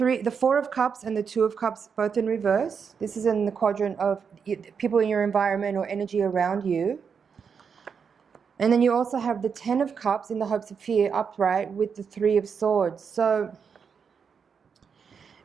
Four of Cups and the Two of Cups both in reverse. This is in the quadrant of people in your environment or energy around you. And then you also have the Ten of Cups in the Hopes of Fear upright with the Three of Swords. So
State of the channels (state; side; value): quieter; left; 6.3 dB